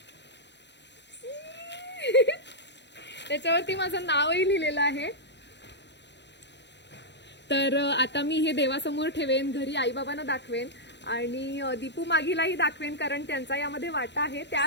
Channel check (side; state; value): right; late; 0.51 ms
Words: त्याच्यावरती माझं नावही लिहिलेलं आहे. तर आता मी हे देवासमोर ठेवेन, घरी आईबाबांना दाखवेन आणि दीपू मागीलाही दाखवेन, कारण त्यांचा यामध्ये वाटा आहे.